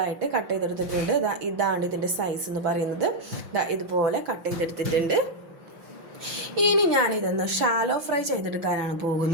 കട്ട് ചെയ്തെടുത്തിട്ടുണ്ട്. ഇതാണ് ഇതിൻ്റെ സൈസ് എന്ന് പറയുന്നത്. ഇതുപോലെ കട്ട് ചെയ്തെടുത്തിട്ടുണ്ട്. ഇനി ഞാനിതൊന്ന് ഷാലോ ഫ്രൈ ചെയ്തെടുക്കാനാണ്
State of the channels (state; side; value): late; left; 6.1 ms